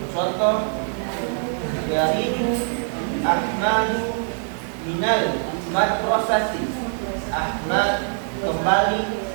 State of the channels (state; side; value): silent; left; 62 dB below the other